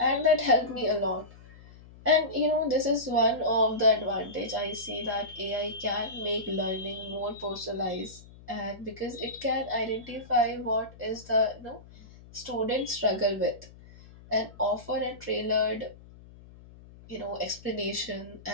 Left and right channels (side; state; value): left; noise; hum, 21 dB below the sound